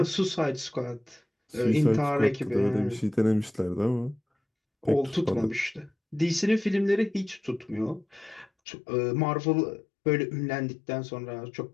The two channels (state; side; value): drops out; right; at 8.5 s